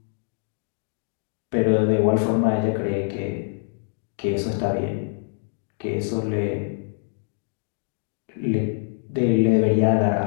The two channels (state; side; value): silent; right; digital silence